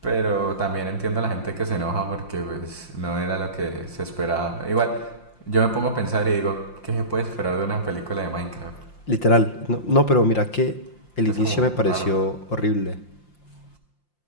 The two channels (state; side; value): late; right; 5.7 ms